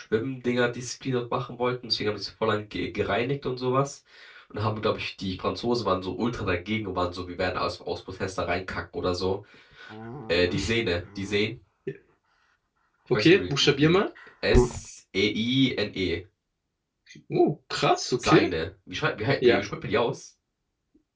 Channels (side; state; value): both; identical; correlation 1.00